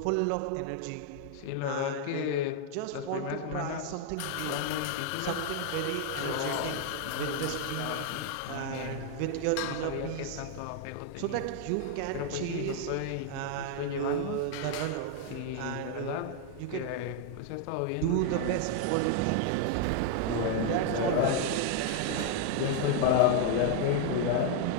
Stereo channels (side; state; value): both; different; correlation 0.00